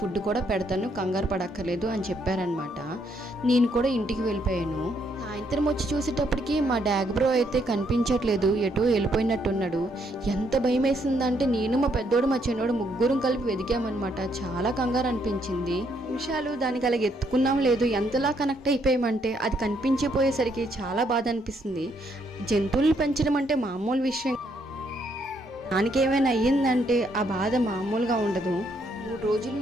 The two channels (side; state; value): both; normal; correlation 0.72